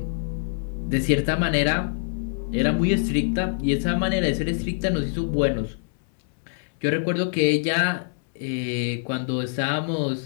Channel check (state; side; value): silent; right; 62 dB below the other